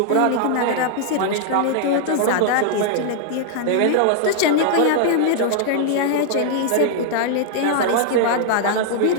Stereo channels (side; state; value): both; different; correlation -0.01